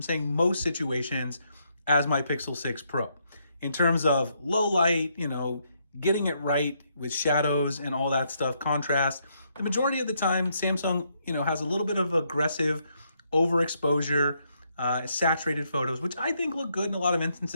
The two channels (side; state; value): both; inverted; correlation -0.75